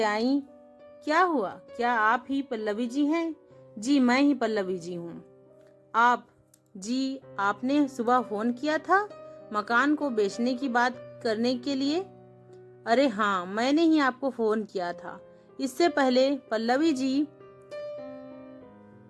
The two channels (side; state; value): both; identical; correlation 1.00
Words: आई। क्या हुआ, क्या आप ही पल्लवी जी हैं? जी मैं ही पल्लवी जी हूँ। आप जी, आपने सुबह फोन किया था मकान को बेचने की बात करने के लिए? अरे हाँ, मैंने ही आपको फोन किया था। इससे पहले पल्लवी जी